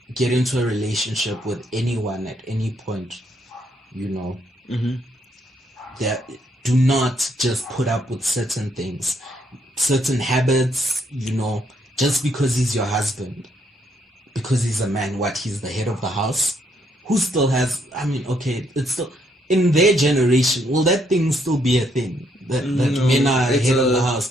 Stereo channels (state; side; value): normal; both; correlation 0.73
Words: get into a relationship with anyone at any point, you know, that do not just put up with certain things, certain habits, you know, just because he's your husband. Because he's a man, he's the head of the house? Who still has, I mean, okay, it's still, in their generation, will that thing still be a thing? That men are head of the